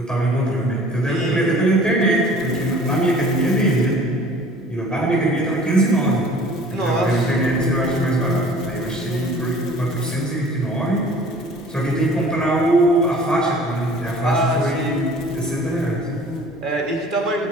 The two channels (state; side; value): normal; both; correlation 0.49